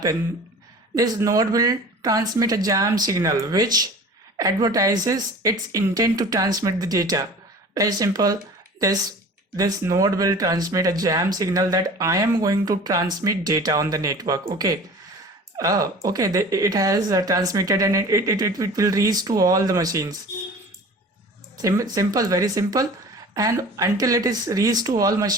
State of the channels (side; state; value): both; normal; correlation 0.41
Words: This node will transmit a jam signal which advertises its intent to transmit the data. Very simple. This node will transmit a jam signal that I am going to transmit data on the network. Okay. Okay, it has transmitted, and it will reach to all the machines. Simple, very simple. And until it is reached to all